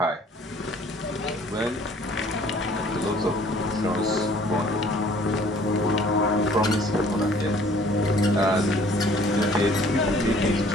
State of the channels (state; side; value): normal; both; correlation 0.55